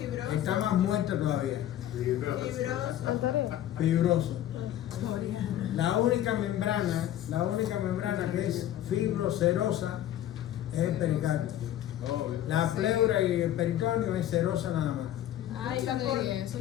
Está más muerta todavía. Fibroso. Anterior. Fibroso. La única membrana que es fibrocerosa es el pericardio. La pleura y el peritoneo es cerosa nada más. Ay,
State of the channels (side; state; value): right; quieter; 12.2 dB